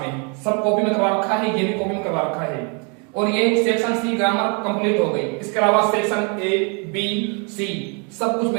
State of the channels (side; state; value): left; quieter; 35.9 dB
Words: में, सब कॉपी में करवा रखा है, ये भी कॉपी में करवा रखा है। और ये सेक्शन सी ग्रामर कंप्लीट हो गई। इसके अलावा सेक्शन ए बी सी सब कुछ